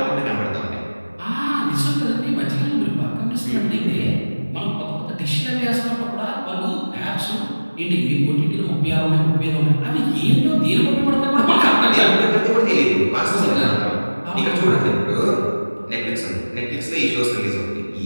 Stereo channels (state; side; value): inverted; both; correlation -1.00